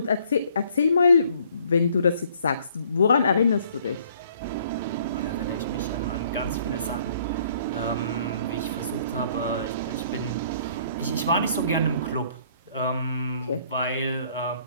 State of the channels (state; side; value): inverted; both; correlation -0.61